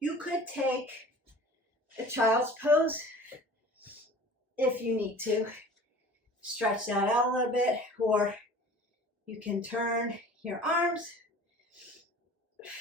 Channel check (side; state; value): both; normal; correlation 0.43